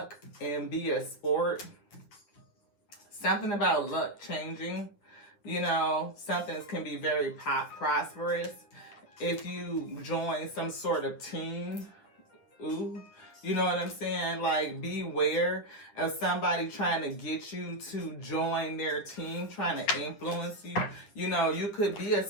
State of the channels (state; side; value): late; right; 9.9 ms